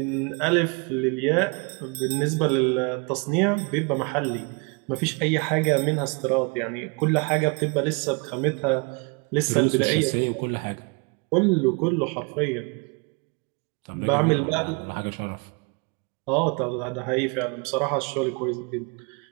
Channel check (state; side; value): quieter; left; 32.3 dB